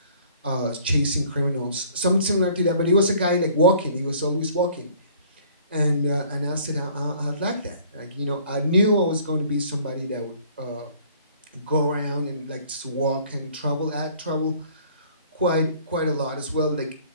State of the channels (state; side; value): inverted; both; correlation -0.55